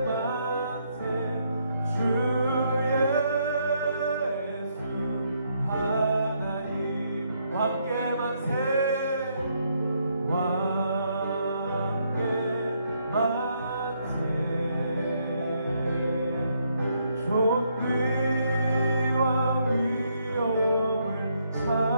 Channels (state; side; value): inverted; both; correlation -0.74